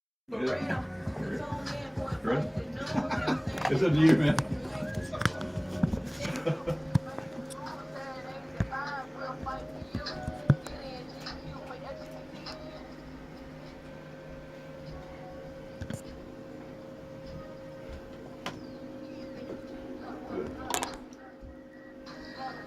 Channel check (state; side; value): identical; both; correlation 1.00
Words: Yeah. Ready? It's up to you, man.